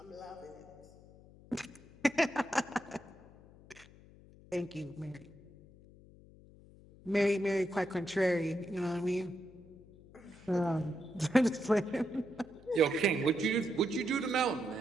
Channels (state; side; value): noise; left; hum, 22 dB below the sound